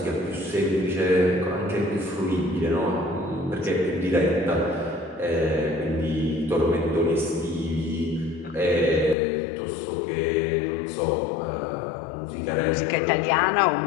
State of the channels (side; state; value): right; drops out; at 9.2 s